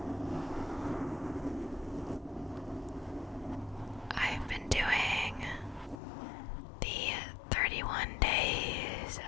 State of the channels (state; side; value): drops out; right; at 6.0 s